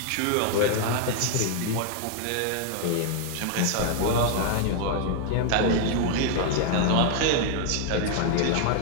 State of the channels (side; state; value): both; different; correlation 0.00